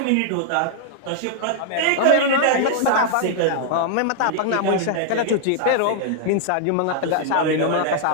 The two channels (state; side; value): different; both; correlation 0.00